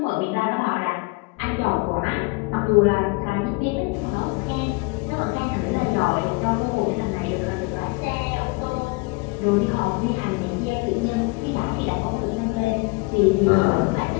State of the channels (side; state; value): right; quieter; 27.4 dB